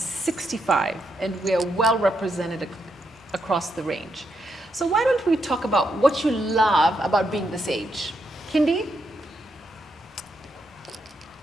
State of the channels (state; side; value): normal; both; correlation 0.80